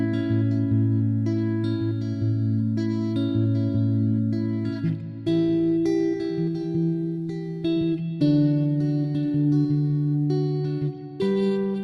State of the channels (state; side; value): identical; both; correlation 1.00